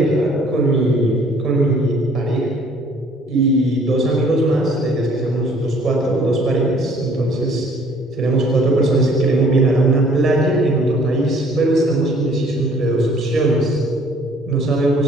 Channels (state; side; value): normal; both; correlation 0.57